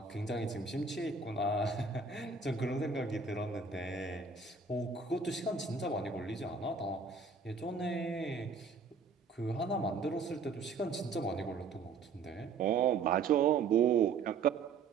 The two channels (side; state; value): left; quieter; 4.8 dB